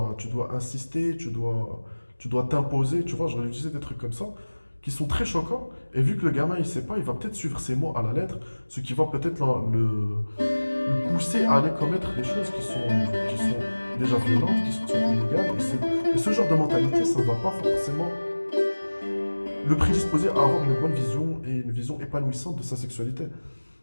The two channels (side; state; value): both; inverted; correlation -1.00